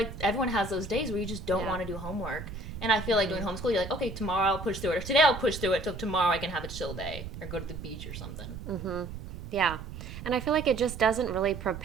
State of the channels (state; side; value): noise; right; rumble, 10 dB below the sound